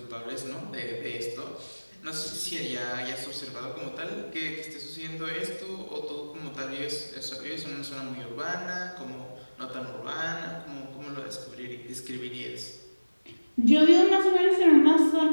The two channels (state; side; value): inverted; both; correlation -1.00